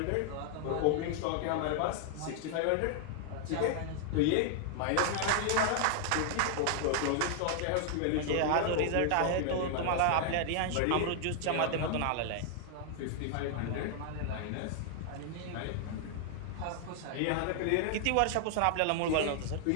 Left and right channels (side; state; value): both; different; correlation 0.00